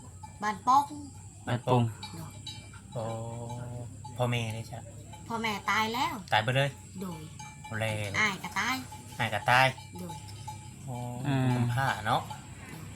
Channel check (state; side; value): identical; both; correlation 1.00